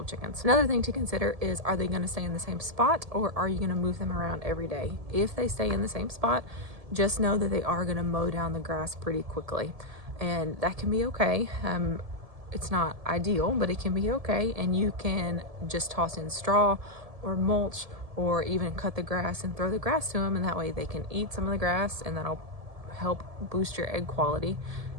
chickens. Another thing to consider is, are they going to stay in the same spot or are you going to move them around every day? If they stay in the same spot, just know that they are going to mow down the grass pretty quickly, and that can be okay. It's not ideal, but it can be okay, and you can just toss in straw or mulch or even cut the grass and throw the grass to them, and that way they can eat some of the grass, and that'll help boost your egg quality,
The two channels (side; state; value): left; late; 1.7 ms